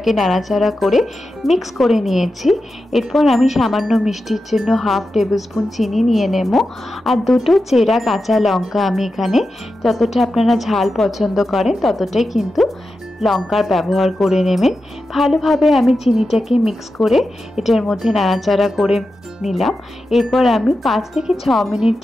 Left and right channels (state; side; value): normal; both; correlation 0.91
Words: নাড়াচাড়া করে মিক্স করে নিয়েছি। এরপর আমি সামান্য মিষ্টির জন্য 1/2 টেবিল স্পুন চিনি নিয়ে নেব। আর দুটো চেরা কাঁচা লঙ্কা আমি এখানে যতটা আপনারা ঝাল পছন্দ করেন ততটাই কিন্তু লঙ্কার ব্যবহার করে নেবেন। ভালোভাবে আমি চিনিটাকে মিক্স করে এটার মধ্যে নাড়াচাড়া করে নিলাম। এরপর আমি 5 থেকে 6 মিনিট